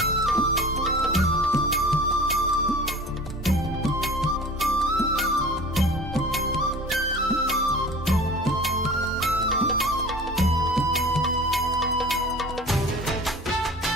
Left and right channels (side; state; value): left; noise; hum, 19 dB below the sound